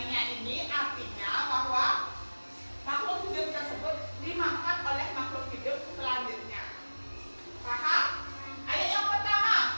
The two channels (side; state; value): both; inverted; correlation -1.00